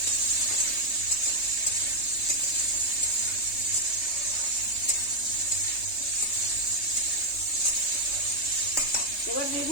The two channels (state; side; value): late; right; 3.2 ms